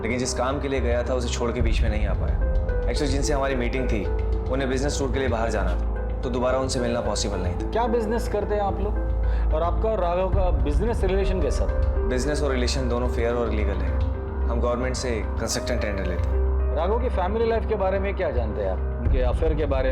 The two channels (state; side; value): identical; both; correlation 1.00